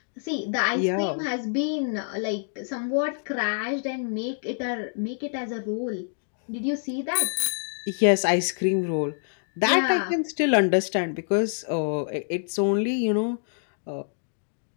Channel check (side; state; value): right; silent; digital silence